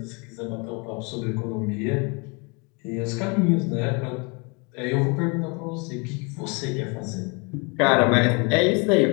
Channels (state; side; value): quieter; right; 31.3 dB